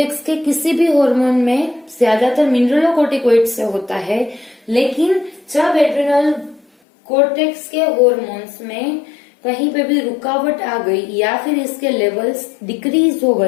के किसी भी हार्मोन में ज्यादातर मिनरलोकोर्टिकोइड से होता है, लेकिन जब एड्रिनल कोर्टेक्स के हार्मोन्स में कहीं पे भी रुकावट आ गई या फिर इसके लेवल्स डिक्रीज हो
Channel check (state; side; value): drops out; right; at 6.7 s